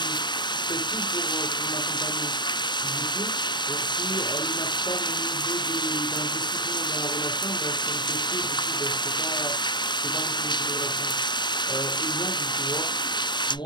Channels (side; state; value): right; late; 0.22 ms